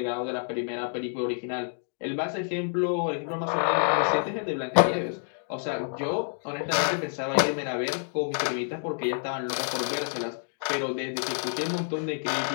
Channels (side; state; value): right; silent; digital silence